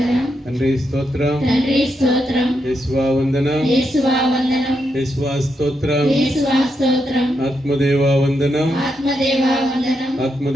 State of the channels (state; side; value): normal; both; correlation 0.82